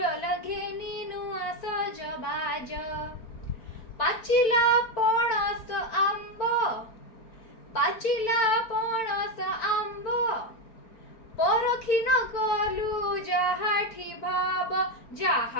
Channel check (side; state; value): right; late; 4.5 ms